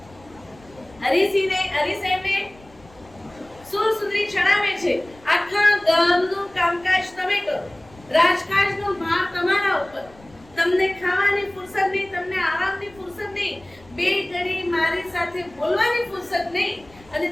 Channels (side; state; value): left; noise; rumble, 25 dB below the sound